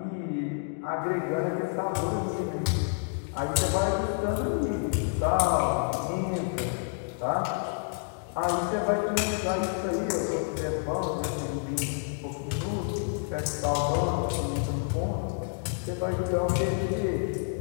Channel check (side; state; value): right; silent; digital silence